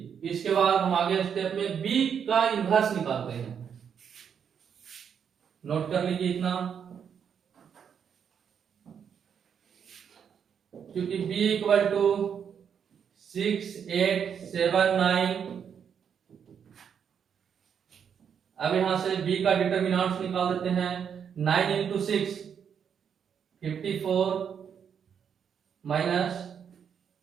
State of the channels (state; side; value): quieter; left; 7.6 dB